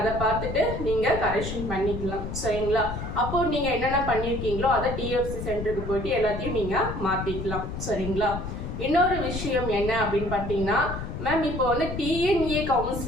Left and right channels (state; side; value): noise; left; rumble, 6 dB below the sound